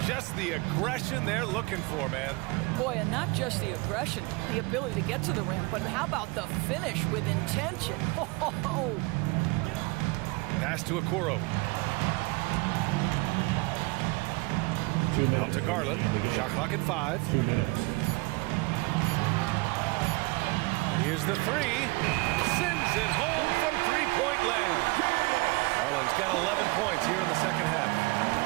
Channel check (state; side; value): quieter; left; 25.5 dB